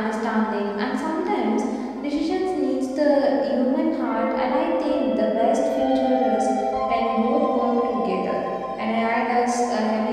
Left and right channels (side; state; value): both; identical; correlation 1.00